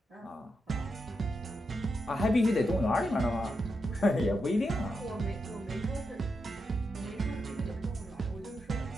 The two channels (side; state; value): both; normal; correlation 0.85